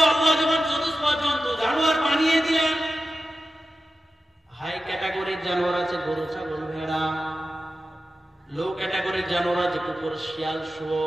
আল্লাহ যখন চতুষ্পদ জন্তু জানোয়ার বানিয়ে দিলেন, হাই ক্যাটাগরির জানোয়ার আছে গরু, ছাগল, ভেড়া। লো ক্যাটাগরির জানোয়ার আছে কুকুর, শিয়াল,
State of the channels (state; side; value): normal; both; correlation 0.93